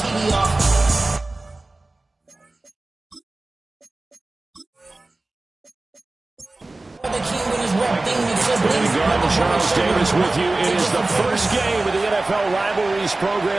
Charles Davis with you. It is the first game of the NFL Rivalries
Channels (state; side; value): quieter; left; 3.0 dB